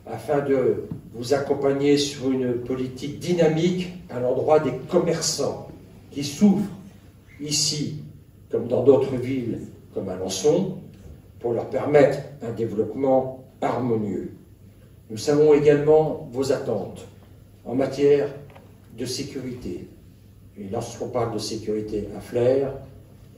afin de vous accompagner sur une politique dynamique à l'endroit des commerçants qui souffrent ici, comme dans d'autres villes, comme Alençon, pour leur permettre un développement harmonieux. Nous savons également vos attentes en matière de sécurité. Et lorsqu'on parle de sécurité à Flers,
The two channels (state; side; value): identical; both; correlation 1.00